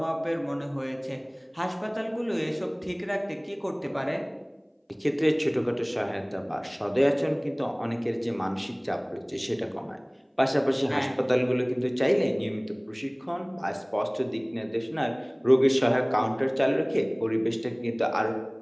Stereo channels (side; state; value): both; identical; correlation 1.00